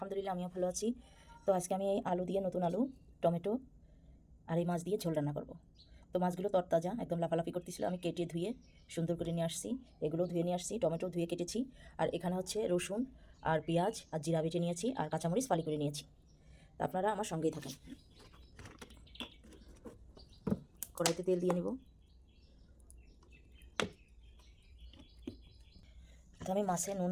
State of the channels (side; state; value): both; identical; correlation 1.00